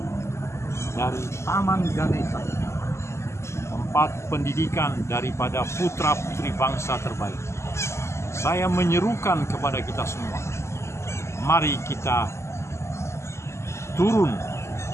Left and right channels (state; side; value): late; right; 0.13 ms